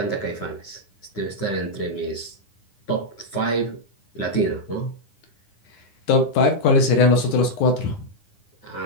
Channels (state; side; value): late; right; 9.9 ms